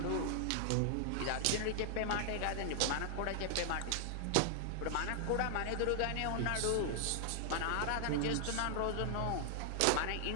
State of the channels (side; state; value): both; different; correlation 0.00